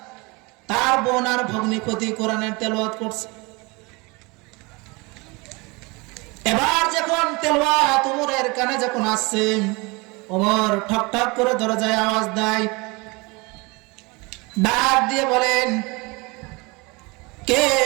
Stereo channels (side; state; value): left; quieter; 26.4 dB